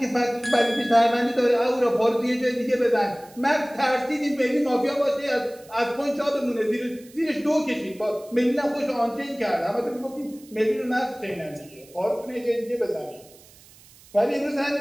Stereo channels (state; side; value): noise; right; hiss, 24 dB below the sound